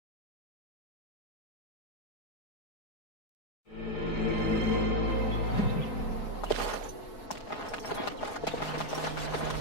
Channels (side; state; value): right; late; 4.8 ms